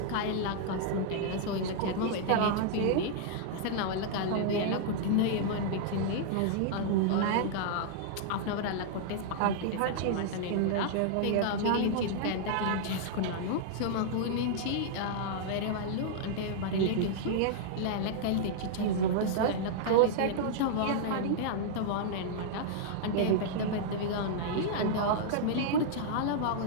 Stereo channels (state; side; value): different; both; correlation -0.01